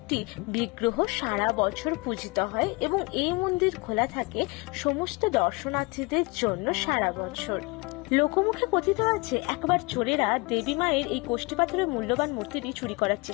বিগ্রহ সারা বছর পূজিত হয় এবং এই মন্দির খোলা থাকে সমস্ত দর্শনার্থীদের জন্য সারা বছর। লোকমুখে কথিত আছে একবার চোরেরা দেবী মায়ের এই কোষ্ঠী পাথরের মূল্যবান মূর্তিটি চুরি করার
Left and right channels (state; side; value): quieter; right; 26.9 dB